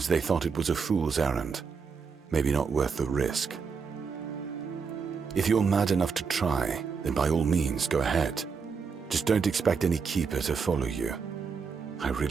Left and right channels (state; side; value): quieter; left; 5.6 dB